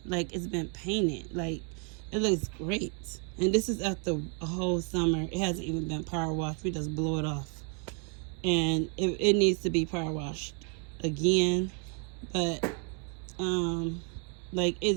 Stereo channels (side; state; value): left; quieter; 38.7 dB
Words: like it's been painted. Like, it looks great. And this is after a whole summer. It hasn't even been power washed. We just blow it off. And it needs to be power washed again. But like,